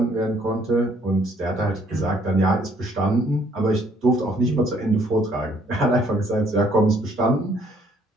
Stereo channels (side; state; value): both; normal; correlation 0.64